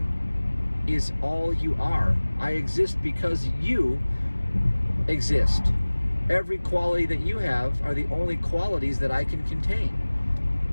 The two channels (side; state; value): both; inverted; correlation -1.00